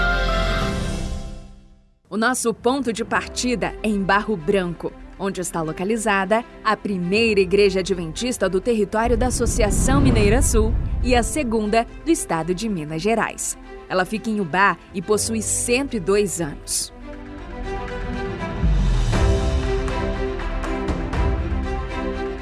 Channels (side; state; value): both; identical; correlation 1.00